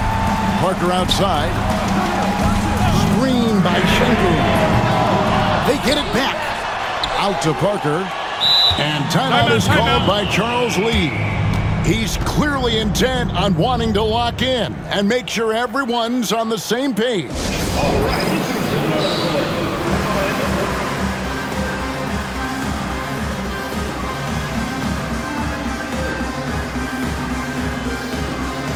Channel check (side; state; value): both; identical; correlation 1.00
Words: Parker outside. Screen by Sengun. They get it back. Out to Parker. And timeout is called by Charles Lee. He's clearly intent on wanting to lock in and make sure everyone's on the same page. All right.